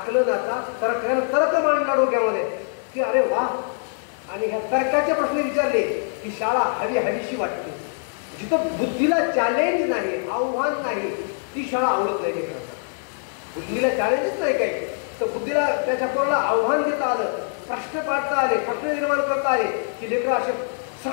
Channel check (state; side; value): silent; right; 63 dB below the other